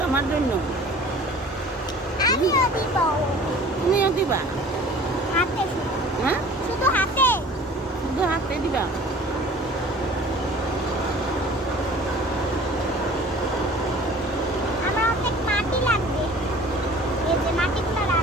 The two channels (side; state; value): both; normal; correlation 0.46